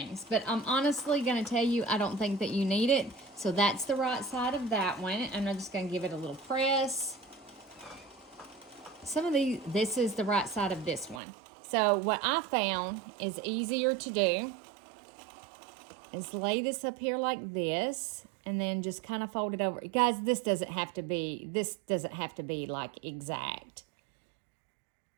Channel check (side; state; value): left; drops out; at 11.2 s